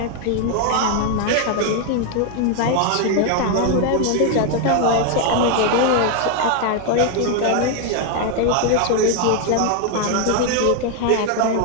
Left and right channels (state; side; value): different; both; correlation 0.01